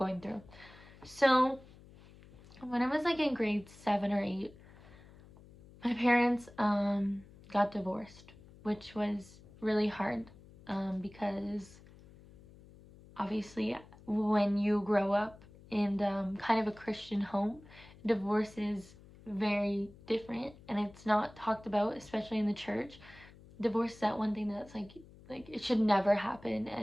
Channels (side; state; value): left; noise; hum, 22 dB below the sound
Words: through. So when I was like in grade 7 or 8, my parents got divorced, which was really hard because obviously when you grow up in kind of a Christian home, divorce is very different and it's not talked about, especially in the church. Divorce is that one thing that's like it should never happen,